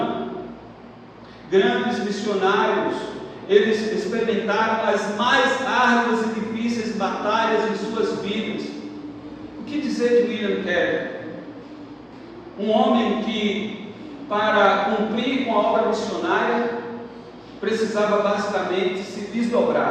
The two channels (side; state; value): both; identical; correlation 1.00